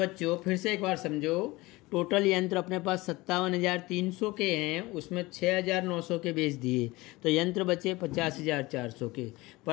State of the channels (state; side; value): quieter; right; 21.3 dB